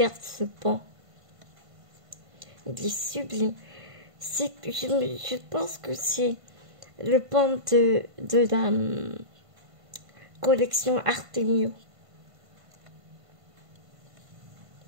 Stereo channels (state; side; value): late; left; 1.5 ms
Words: ce pan. Il est sublime. Je pense que c'est le pan de la collection Artemio.